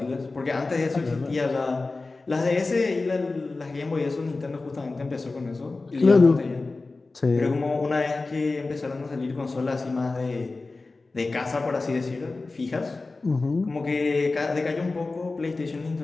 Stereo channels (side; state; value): right; quieter; 3.5 dB